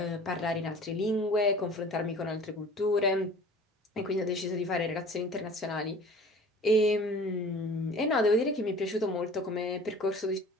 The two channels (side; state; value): both; normal; correlation 0.45